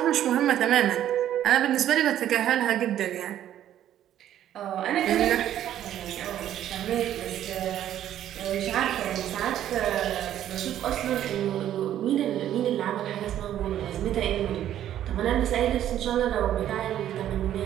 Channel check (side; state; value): left; quieter; 11.5 dB